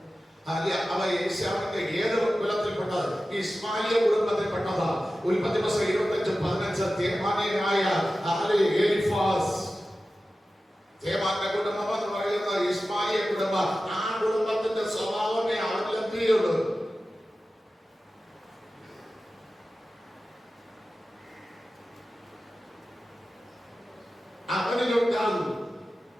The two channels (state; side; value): normal; both; correlation 0.94